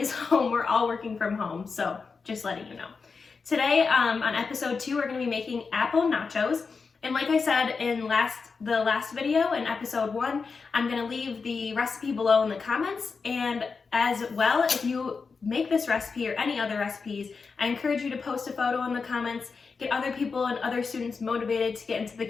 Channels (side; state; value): right; quieter; 4.9 dB